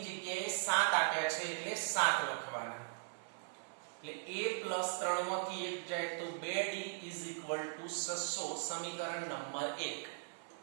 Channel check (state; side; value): silent; left; 52 dB below the other